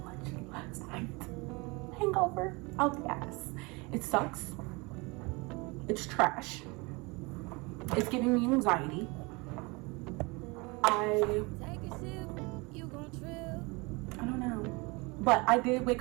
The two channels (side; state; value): left; quieter; 26.7 dB